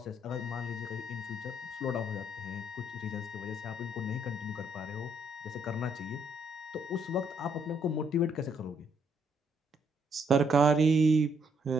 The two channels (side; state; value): both; normal; correlation 0.71